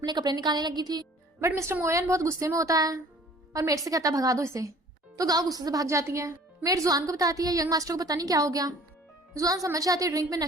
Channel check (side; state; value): both; normal; correlation 0.51